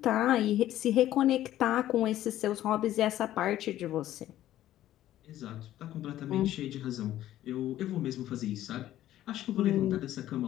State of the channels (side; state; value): right; quieter; 13.3 dB